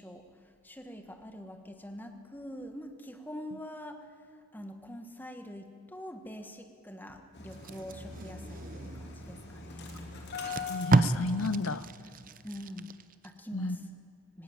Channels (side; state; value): both; normal; correlation 0.66